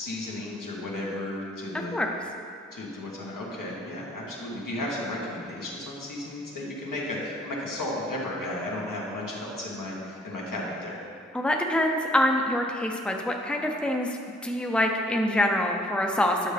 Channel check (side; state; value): both; normal; correlation 0.61